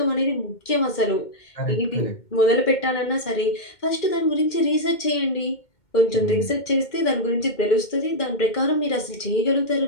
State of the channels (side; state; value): right; late; 2.1 ms